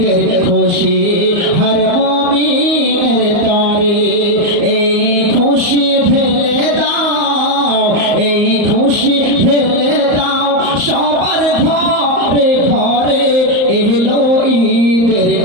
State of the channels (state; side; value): late; left; 34 ms